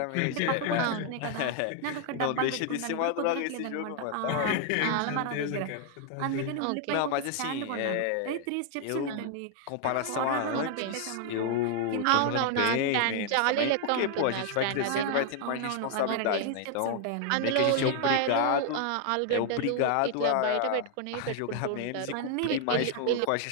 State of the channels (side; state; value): both; different; correlation 0.00